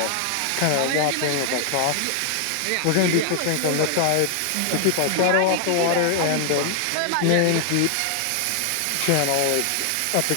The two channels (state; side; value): different; both; correlation 0.00